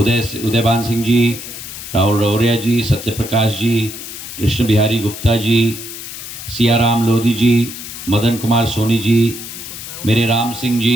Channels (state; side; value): noise; left; hiss, 11 dB below the sound